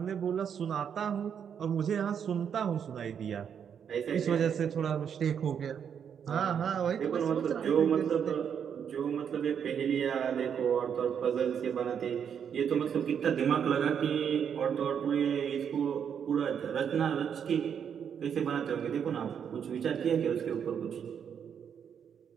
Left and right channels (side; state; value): left; quieter; 7.9 dB